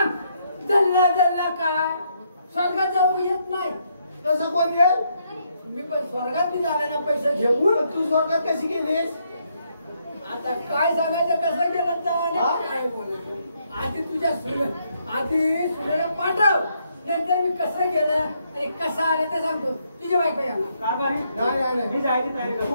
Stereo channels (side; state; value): both; inverted; correlation -0.74